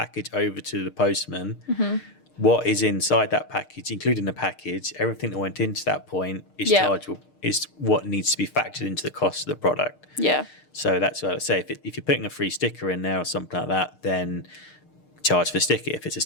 over to the postman. What is inside that package, including the package, everything that went into that point is chargeable, is what needs to be factored into the cost of the product. Yeah. So that's what I would say. If you're putting a free sticker in there or something like that, then charge for sticker. If it's a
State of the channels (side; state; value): right; late; 6.6 ms